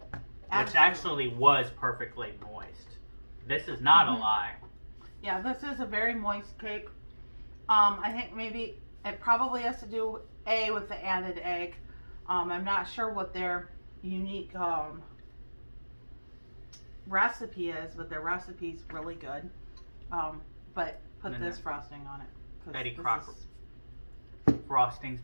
which actually was perfectly moist. This is not a lie. Yeah, this is a very moist cake. I think maybe it probably has to do with the added egg. I'm not sure what their unique recipe is, but their recipe's really good. But put this frosting on it. Betty Crocker frosting's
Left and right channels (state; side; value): inverted; both; correlation -1.00